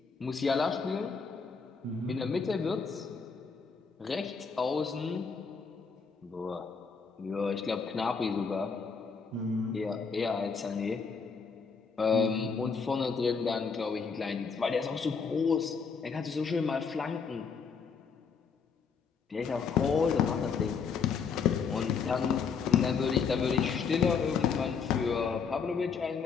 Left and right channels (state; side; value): quieter; right; 5.7 dB